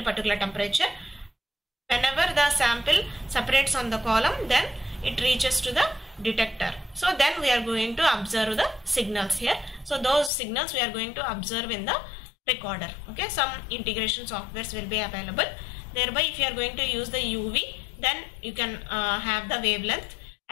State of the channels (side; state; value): right; drops out; at 10.3 s